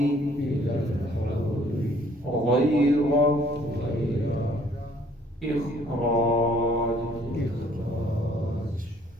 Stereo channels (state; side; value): normal; both; correlation 0.60